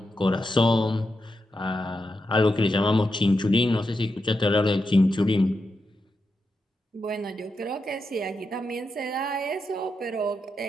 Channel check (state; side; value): normal; both; correlation 0.86